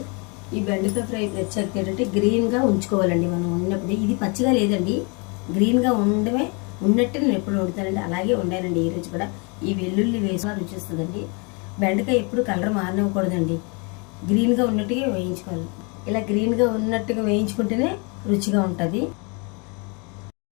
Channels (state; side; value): quieter; right; 32.4 dB